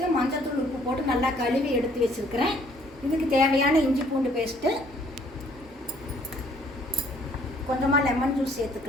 மஞ்சள்தூள் உப்பு போட்டு நல்லா கழுவி எடுத்து வச்சுருக்கிறேன். இதுக்கு தேவையான இஞ்சி பூண்டு பேஸ்ட்டு, கொஞ்சமாக லெமன் ஜூஸ்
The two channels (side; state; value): both; normal; correlation 0.62